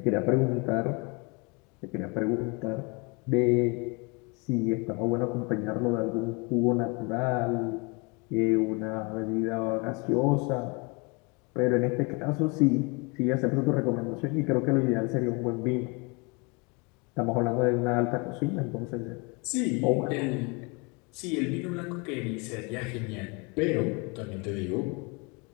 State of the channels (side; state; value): right; quieter; 29.1 dB